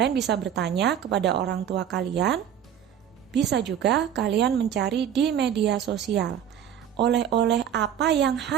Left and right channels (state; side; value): quieter; left; 9.4 dB